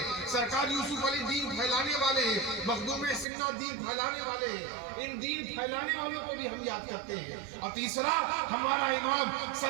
سرکار یوسف علی دین پھیلانے والے ہیں، مخدوم سنہ دین پھیلانے والے ہیں۔ ان دین پھیلانے والوں کو بھی ہم یاد کرتے ہیں۔ اور تیسرا ہمارا امام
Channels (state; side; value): drops out; left; at 3.2 s